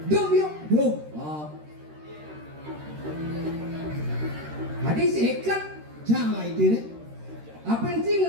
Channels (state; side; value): late; left; 13 ms